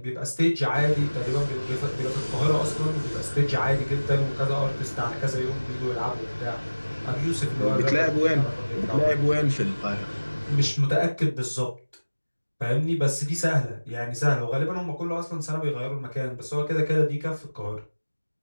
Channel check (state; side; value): inverted; both; correlation -1.00